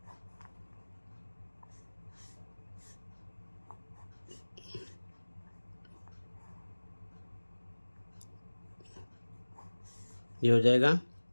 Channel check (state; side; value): inverted; both; correlation -1.00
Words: ये हो जाएगा